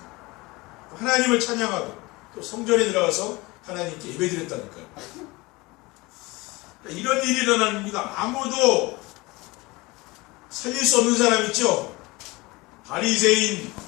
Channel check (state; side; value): quieter; right; 22.8 dB